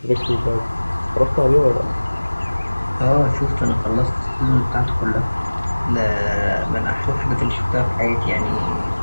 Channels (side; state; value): both; inverted; correlation -1.00